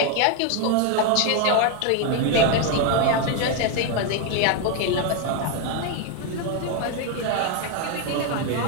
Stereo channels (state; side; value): different; both; correlation 0.01